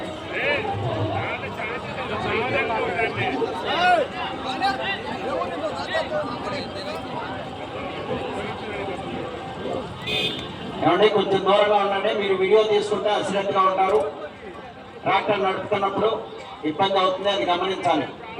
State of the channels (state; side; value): identical; both; correlation 1.00